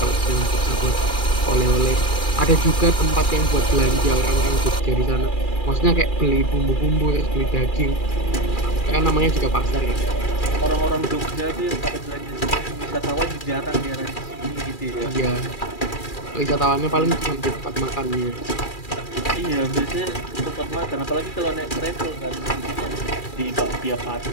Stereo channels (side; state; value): right; late; 2.4 ms